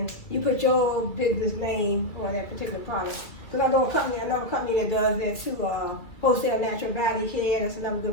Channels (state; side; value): late; right; 2.5 ms